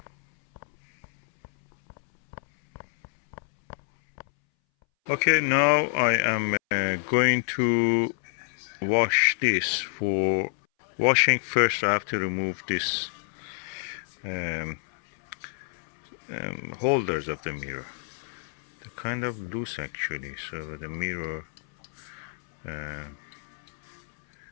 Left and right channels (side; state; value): right; silent; 60 dB below the other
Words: Okay, now I am going to wash this. For washing, first I have to remove this holders of the mirror. They're kind of loose actually, so the mirror